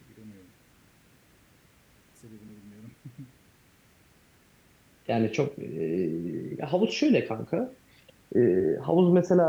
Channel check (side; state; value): both; identical; correlation 1.00